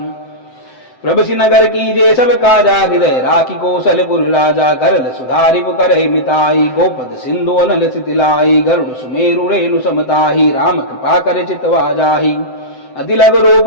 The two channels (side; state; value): right; late; 7.8 ms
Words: प्रभु नगर की जे सब काजा हृदय राखी कौशलपुर राजा करल सुधारि करहि मिताई गोपद सिंधु अनल सितिलाई गरुड़ सुमेरु रेणु समताही राम कृपा कर चितवा जाही अति लघु रूप